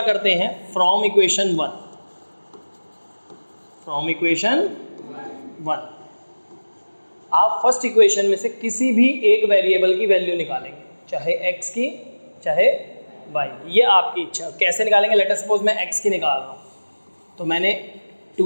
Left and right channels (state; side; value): inverted; both; correlation -1.00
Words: करते हैं, फ्रॉम इक्वेशन 1 आप फर्स्ट इक्वेशन में से किसी भी एक वेरिएबल की वैल्यू निकालेंगे, चाहे x की चाहे y, ये आपकी इच्छा। कैसे निकालेंगे, लेट अस सपोज मैं x की निकाल रहा हूँ, तो मैंने